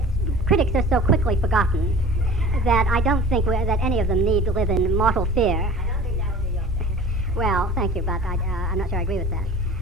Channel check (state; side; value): normal; both; correlation 0.42